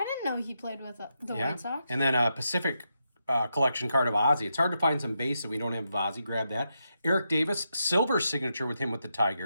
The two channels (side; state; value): both; inverted; correlation -0.84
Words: didn't know he played with the White Sox. And then a Pacific collection card of Ozzy. It's hard to find some base that we don't have of Ozzy. Grab that. Eric Davis, silver signature with him with the